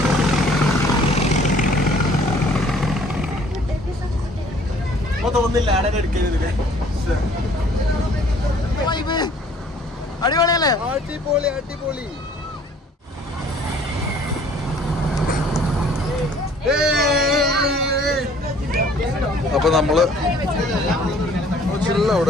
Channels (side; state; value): both; normal; correlation 0.56